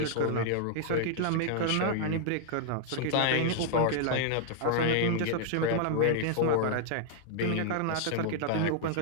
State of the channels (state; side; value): different; both; correlation -0.01